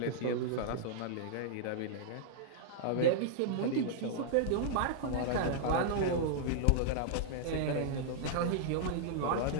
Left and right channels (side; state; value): both; different; correlation -0.01